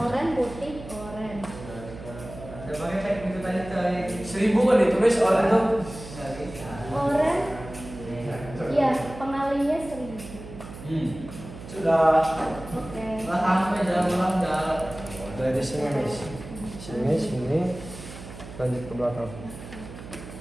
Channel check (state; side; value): noise; right; hum, 13 dB below the sound